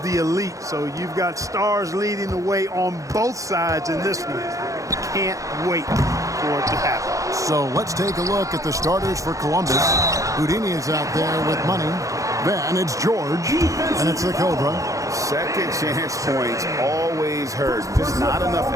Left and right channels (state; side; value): late; left; 0.16 ms